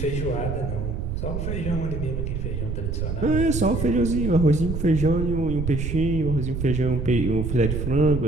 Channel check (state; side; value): noise; right; rumble, 3 dB below the sound